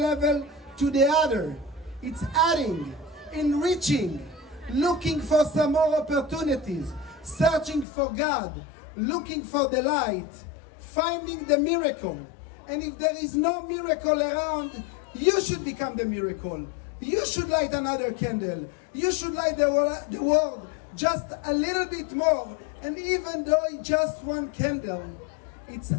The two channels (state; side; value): drops out; right; at 7.9 s